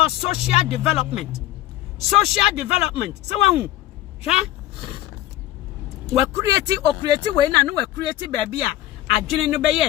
social development. Social development. So we create we na no we create baby adwene no be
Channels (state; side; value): quieter; right; 14.6 dB